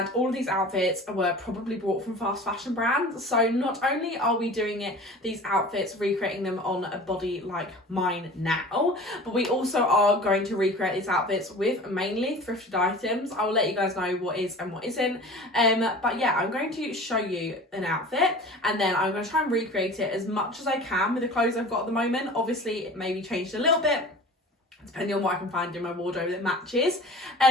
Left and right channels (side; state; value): both; normal; correlation 0.40